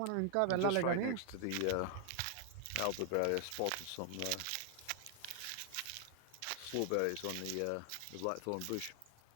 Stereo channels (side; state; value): both; different; correlation 0.00